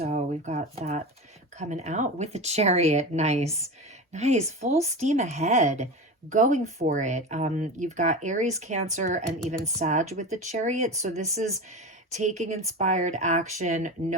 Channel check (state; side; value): normal; both; correlation 0.26